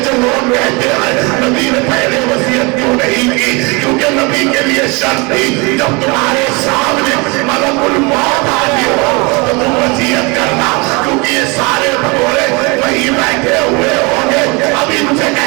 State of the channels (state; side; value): quieter; left; 28.1 dB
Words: جو لوگ کہتے ہیں نبی نے پہلے وصیت کیوں نہیں کی، کیونکہ نبی کے لیے شرط تھی جب تمہارے سامنے ملک الموت حاضر ہو تو تم وصیت کرنا، کیونکہ یہ سارے بھگورے وہی بیٹھے ہوئے ہوں گے۔ اب ان سے